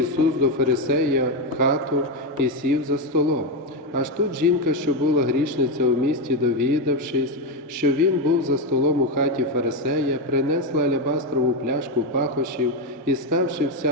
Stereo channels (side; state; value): both; normal; correlation 0.08